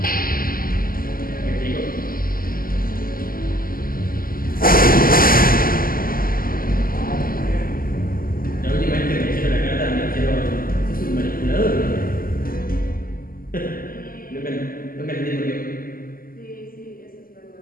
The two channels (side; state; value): right; late; 0.42 ms